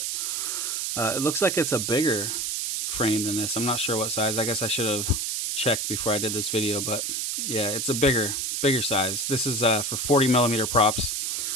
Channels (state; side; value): noise; right; hiss, 1 dB below the sound